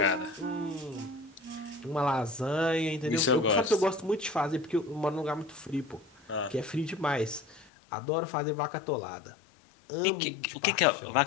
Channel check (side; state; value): right; drops out; at 7.7 s